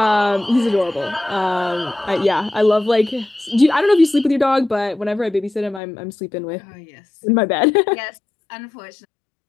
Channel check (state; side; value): drops out; right; at 5.8 s